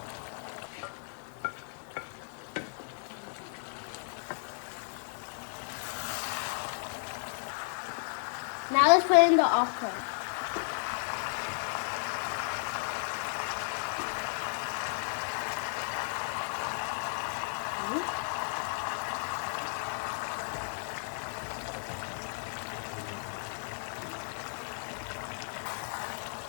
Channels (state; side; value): silent; right; digital silence